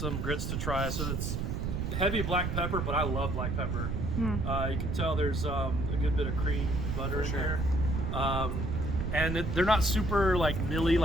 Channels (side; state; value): right; noise; rumble, 1 dB below the sound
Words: grits to try. So it's heavy black pepper, but I love black pepper. You can tell there's a good bit of cream and butter in there. And they're not super like nilly,